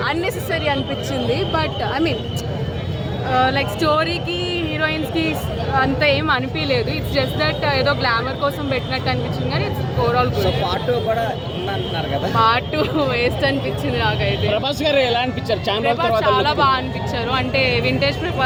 అన్నెసెసరీ అనిపించింది, బట్ ఐ మీన్ లైక్ స్టోరీకి హీరోయిన్స్కి అంత ఏం అనిపించలేదు. ఇట్స్ జస్ట్ దట్ ఏదో గ్లామర్ కోసం పెట్టినట్టు అనిపించింది, కానీ ఇట్స్ ఓవరాల్ గుడ్. పార్ట్ 2 కూడా ఉందంటున్నారు కదా? పార్ట్ 2 వేస్ట్ అనిపించింది నాకైతే. ప్రభాస్ గారు ఎలా అనిపించారు? చాలా బాగా అనిపించారు, అంటే వింటేజ్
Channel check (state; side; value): identical; both; correlation 1.00